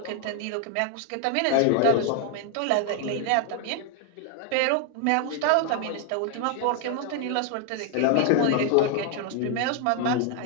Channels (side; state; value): both; different; correlation 0.00